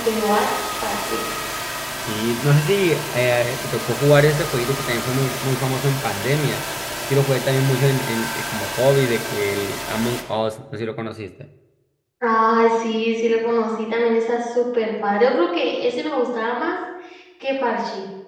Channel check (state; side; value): identical; both; correlation 1.00